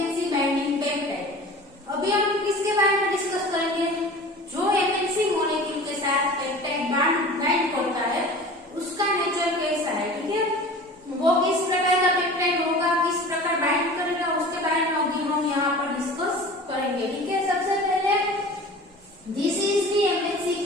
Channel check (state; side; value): normal; both; correlation 0.39